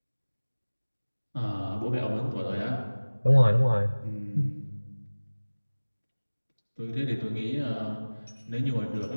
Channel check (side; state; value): both; inverted; correlation -1.00